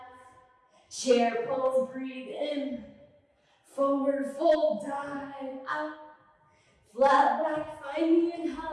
Chair pose, breathe in. Forward fold, dive out. Flat back, find the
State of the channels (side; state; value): both; identical; correlation 1.00